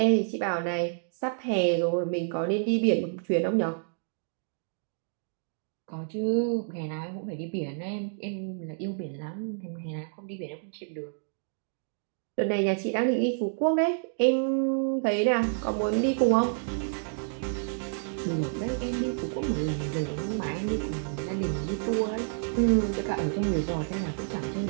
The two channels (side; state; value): left; silent; digital silence